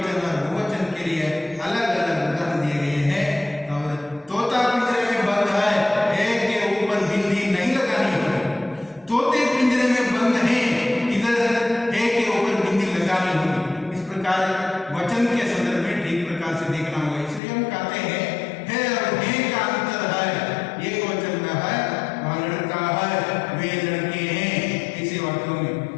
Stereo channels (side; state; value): right; drops out; at 17.4 s